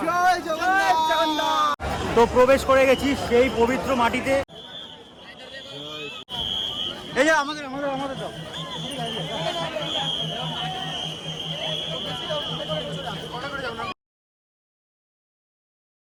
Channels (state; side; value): identical; both; correlation 1.00